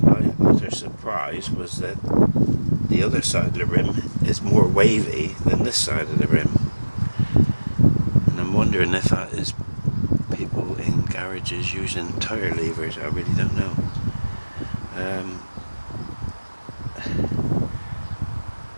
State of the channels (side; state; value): both; inverted; correlation -1.00